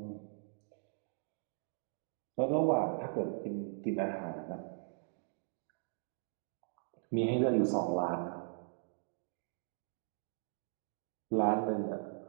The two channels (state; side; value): silent; left; digital silence